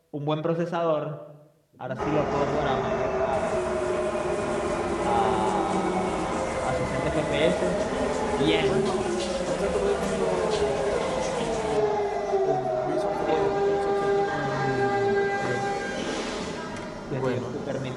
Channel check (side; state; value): both; identical; correlation 1.00